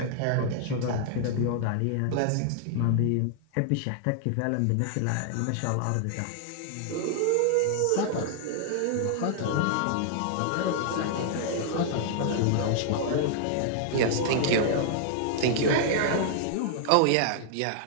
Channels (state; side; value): different; both; correlation -0.01